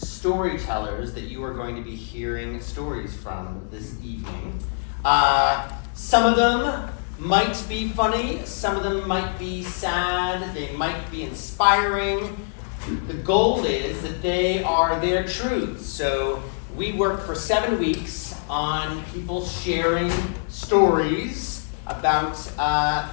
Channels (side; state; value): right; silent; digital silence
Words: that you are going to be hearing stories from this evening. Some of them might be funny, some of them might be sad, they might be inspiring. The goal is that they are their truths. So we worked for 7 weeks on people sharing stories about